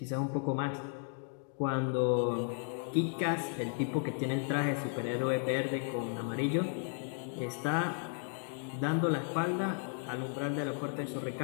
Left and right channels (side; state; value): right; silent; 55 dB below the other